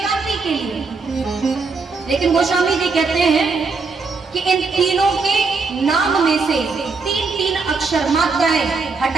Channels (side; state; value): left; quieter; 4.4 dB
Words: कांति के लिए। लेकिन गोस्वामी जी कहते हैं कि इन तीनों के नाम में से तीन तीन अक्षर मात्राएं